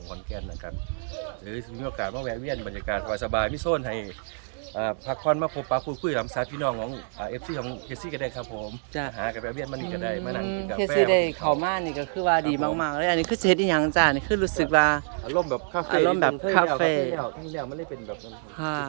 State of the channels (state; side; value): silent; left; 60 dB below the other